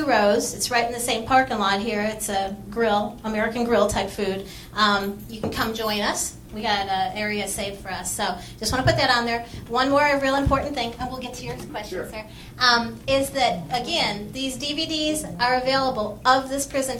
Rows, it's right in the same parking lot here. It's a grill, American grill type food. You can come join us. We got an area saved for us. So just want to put that on there. One more real important thing, and we'll get to your question, sir, is that, again, these DVDs are available of this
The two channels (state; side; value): identical; both; correlation 1.00